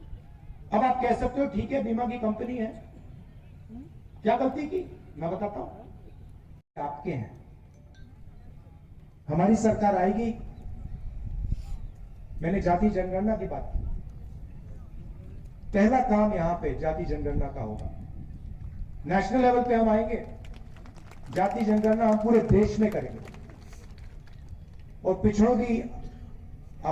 अब आप कह सकते हो ठीक है, बीमा की कंपनी है, क्या गलती की? मैं बताता हूं। आपके हैं, हमारी सरकार आएगी। मैंने जाति जनगणना की बात की। पहला काम यहां पे जाति जनगणना का होगा। नेशनल लेवल पे हम आएंगे, जाति जनगणना हम पूरे देश में करेंगे और पिछड़ों की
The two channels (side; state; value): both; identical; correlation 1.00